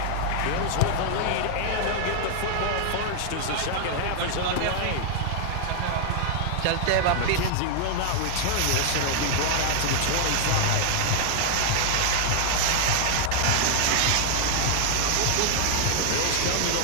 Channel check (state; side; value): different; both; correlation 0.00